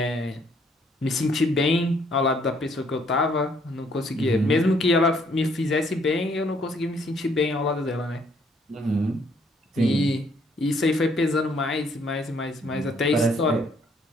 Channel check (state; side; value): normal; both; correlation 0.66